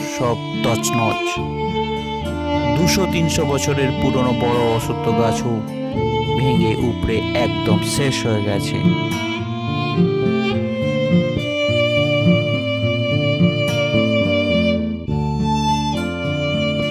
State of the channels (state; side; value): identical; both; correlation 1.00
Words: সব তছনছ, 200-300 বছরের পুরনো বড় অশ্বত্থ গাছও ভেঙে উপড়ে একদম শেষ হয়ে গেছে।